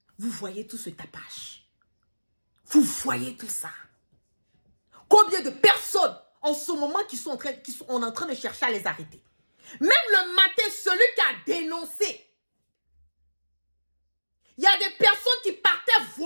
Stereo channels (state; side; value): inverted; both; correlation -1.00